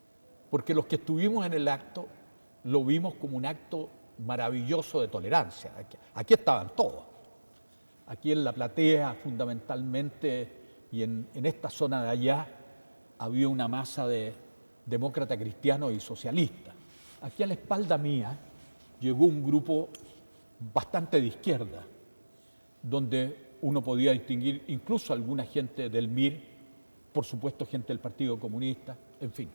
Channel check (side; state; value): both; inverted; correlation -1.00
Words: porque los que estuvimos en el acto lo vimos como un acto maravilloso de tolerancia. Aquí estaban todos. Aquí en la platea, fundamentalmente, y en esta zona de allá, había una masa de demócratas cristianos y socialistas. Aquí a la espalda mía llegó un grupo bastante de izquierda, donde uno podía distinguir incluso alguna gente del MIR, por supuesto gente del Partido Comunista, en fin,